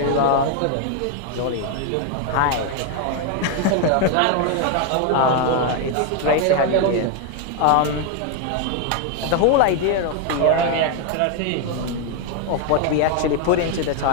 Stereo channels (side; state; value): both; different; correlation 0.01